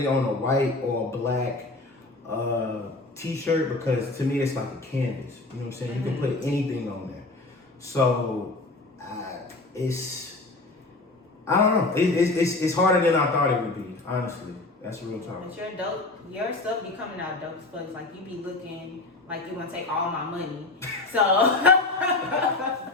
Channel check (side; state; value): right; quieter; 3.1 dB